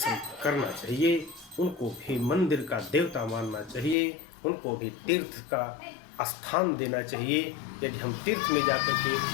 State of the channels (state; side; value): drops out; right; at 4.0 s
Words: करना चाहिए, उनको भी मंदिर का देवता मानना चाहिए, उनको भी तीर्थ का स्थान देना चाहिए। यदि हम तीर्थ में जाकर के